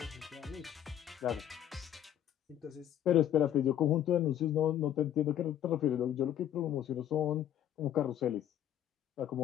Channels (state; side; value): quieter; right; 10.7 dB